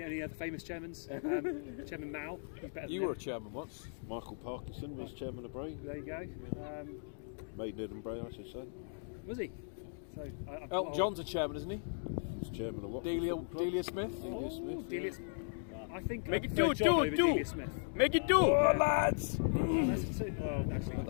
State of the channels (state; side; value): silent; right; digital silence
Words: other famous chairmans. Chairman Mao. He's better than You were a him. chairman once. Michael Parkinson was chairman of Bray. There you go. Maidenhead and Bray, I should say. Was he? So Elton John's a chairman, isn't he? He's chairman of what? Delia Smith. Delia Smith. Delia, I think Make I it prefer two, John two, over two. Delia Smith. Make it 2, lads. That's a two. Well, actually,